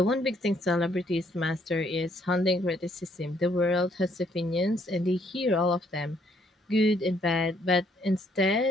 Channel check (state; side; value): normal; both; correlation 0.68